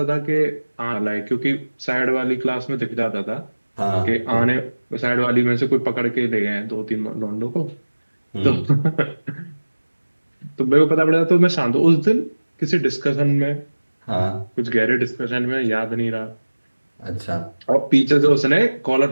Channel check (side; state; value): both; inverted; correlation -1.00